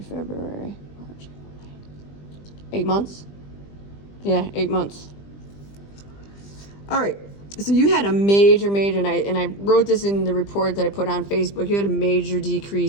March. 8 months? Yeah, 8 months. All right, so you had a major, and I wrote this in the report that I put on Facebook. You had a major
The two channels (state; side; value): late; right; 20 ms